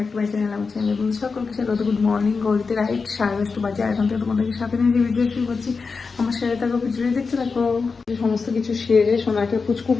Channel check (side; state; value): right; quieter; 4.7 dB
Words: to my channel. আমার চ্যানেল বন্ধু সকলকে স্বাগত। গুড মর্নিং, ঘড়িতে রাইট 10:30 বাজে। এখন থেকে তোমাদেরকে সাথে নিয়ে ভিডিও শুরু করছি। আমার সাথে থাকো, ভিডিও দেখতে থাকো। সমস্ত কিছু সেরে সোনাকে